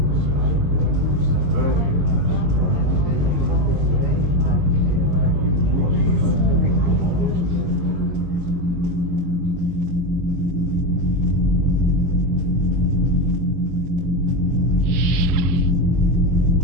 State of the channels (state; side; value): late; left; 22 ms